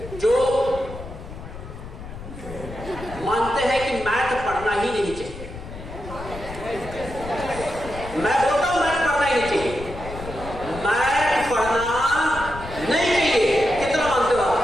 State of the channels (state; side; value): noise; left; rumble, 12 dB below the sound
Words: जो मानते हैं कि मैथ पढ़ना ही नहीं चाहिए? मैं बोलता हूं मैथ पढ़ना ही नहीं चाहिए, मैथ पढ़ना नहीं चाहिए। कितना मानते हो आप?